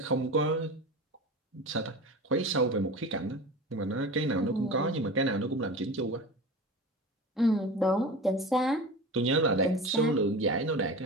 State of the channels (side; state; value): both; normal; correlation 0.32